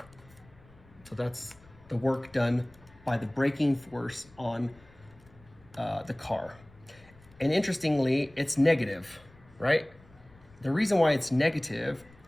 So that's the work done by the braking force on the car. And interestingly, it's negative, right? The reason why it's negative,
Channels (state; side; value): noise; left; rumble, 26 dB below the sound